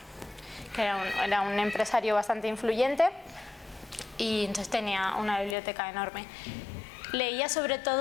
que era un empresario bastante influyente, y entonces tenía una biblioteca enorme. Leía sobre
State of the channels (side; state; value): right; drops out; at 5.6 s